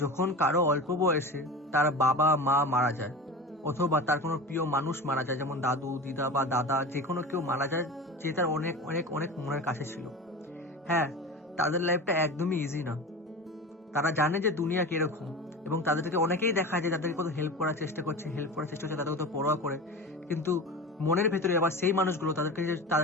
যখন কারো অল্প বয়সে তার বাবা মা মারা যায়, অথবা তার কোনো প্রিয় মানুষ মারা যায়, যেমন দাদু দিদা বা দাদা, যে কোনো কেউ মারা যায় যে তার অনেক অনেক অনেক মনের কাছে ছিল। হ্যাঁ, তাদের লাইফটা একদমই ইজি না। তারা জানে যে দুনিয়া কিরকম, এবং তাদেরকে অনেকেই দেখা যায় যাদেরকে কত হেল্প করার চেষ্টা করছে, তাদের কত পরোয়া করে, কিন্তু মনের ভেতরে আবার সেই মানুষগুলো তাদেরকে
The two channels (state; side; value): normal; both; correlation 0.31